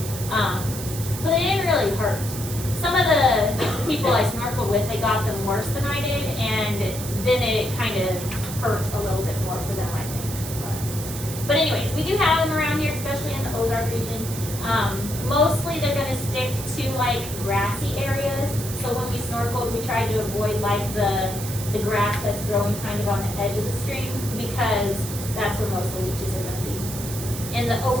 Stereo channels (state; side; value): noise; right; hiss, 9 dB below the sound